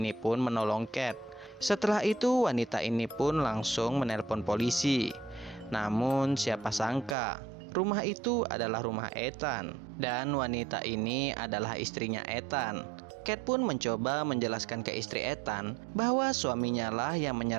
pun menolong Kate. Setelah itu wanita ini pun langsung menelpon polisi. Namun siapa sangka rumah itu adalah rumah Ethan. Dan wanita ini adalah istrinya Ethan. Kate pun mencoba menjelaskan ke istri Ethan bahwa suaminya lah yang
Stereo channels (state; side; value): drops out; left; at 7.2 s